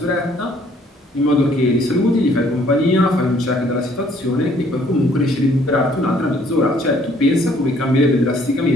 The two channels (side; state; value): both; normal; correlation 0.62